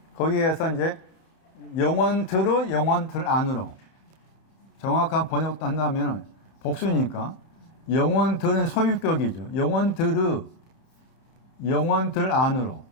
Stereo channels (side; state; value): right; late; 30 ms